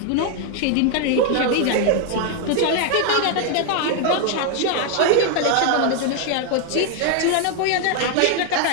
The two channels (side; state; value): both; different; correlation 0.00